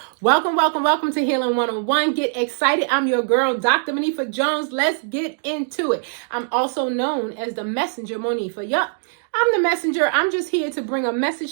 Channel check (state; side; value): silent; left; digital silence